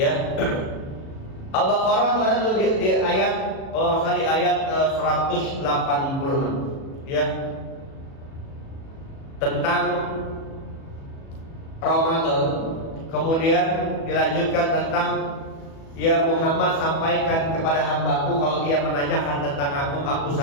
Al-Baqarah ada tuh di ayat kali ayat 186 ya. Tentang Ramadan. Kemudian dilanjutkan tentang ya Muhammad sampaikan kepada hambaku kalau dia menanyakan tentang aku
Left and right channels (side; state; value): right; late; 37 ms